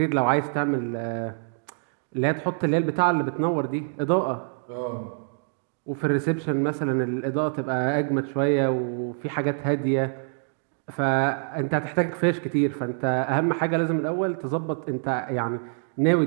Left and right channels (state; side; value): silent; left; digital silence